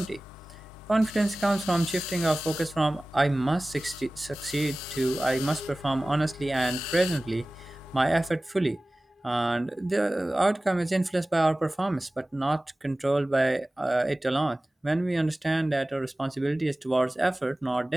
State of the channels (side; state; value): both; normal; correlation 0.98